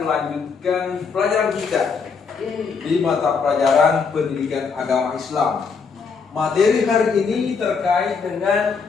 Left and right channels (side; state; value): right; quieter; 5.4 dB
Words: melanjutkan pelajaran kita di mata pelajaran pendidikan agama Islam. Materi hari ini terkait dengan